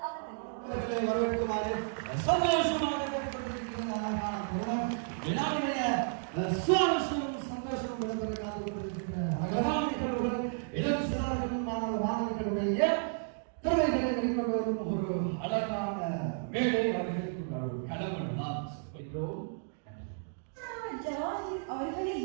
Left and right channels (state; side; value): silent; left; digital silence